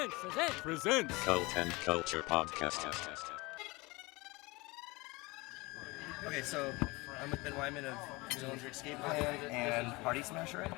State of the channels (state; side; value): quieter; right; 23.8 dB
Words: Present. Cult and Culture Podcast. Okay, so I'm with Ben Weinman of Dillinger Escape Plan and Party Smasher.